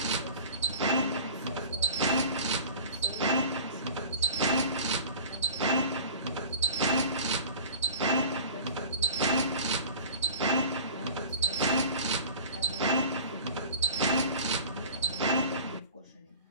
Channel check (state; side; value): inverted; both; correlation -0.39